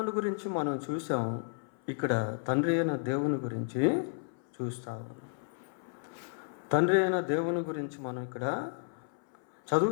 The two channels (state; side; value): silent; right; 56 dB below the other